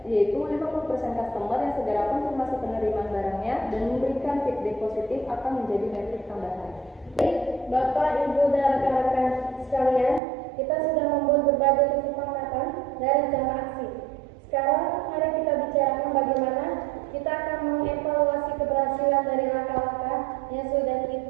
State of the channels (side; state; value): left; drops out; at 10.2 s